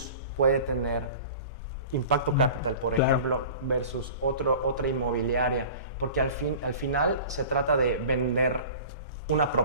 puede tener Impacto Capital, por ejemplo, versus otra inmobiliaria? Porque al final se trata de vender una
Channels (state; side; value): inverted; both; correlation -0.40